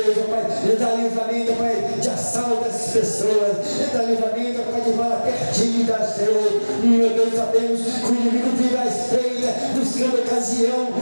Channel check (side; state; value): both; inverted; correlation -1.00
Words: ó Pai, ele dá livramento, Pai, de assalto dessas pessoas, ele dá livramento, Pai, de bala perdida, Senhor. Meu Deus, sabemos que o inimigo vive à espreita, buscando ocasião,